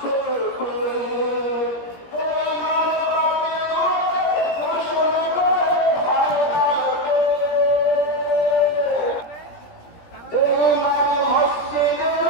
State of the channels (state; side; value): late; right; 17 ms